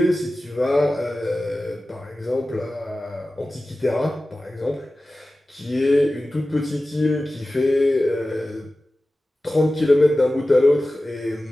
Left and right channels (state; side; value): normal; both; correlation 0.95